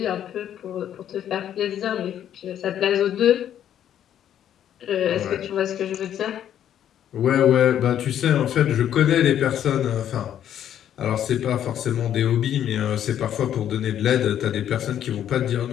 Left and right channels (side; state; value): right; quieter; 10.4 dB